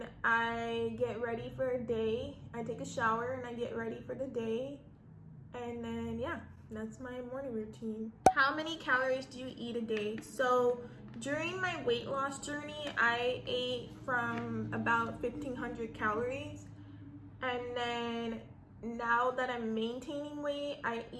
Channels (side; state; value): both; identical; correlation 1.00